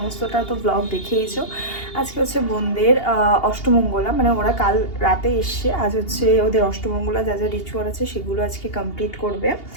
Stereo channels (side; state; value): right; late; 2.8 ms